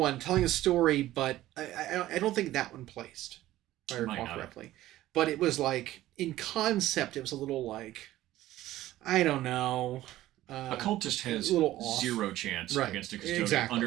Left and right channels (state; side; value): quieter; left; 15.0 dB